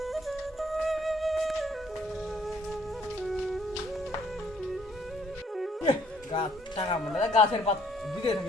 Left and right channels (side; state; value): both; normal; correlation 0.64